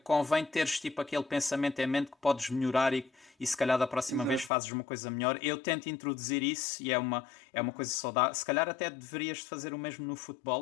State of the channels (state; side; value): drops out; right; at 4.5 s